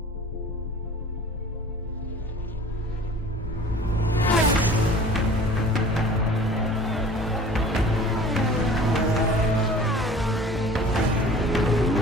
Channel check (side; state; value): both; normal; correlation 0.45